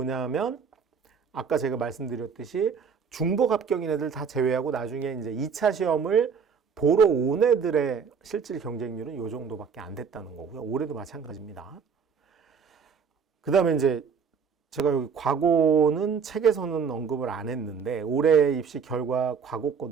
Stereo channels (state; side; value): quieter; left; 6.2 dB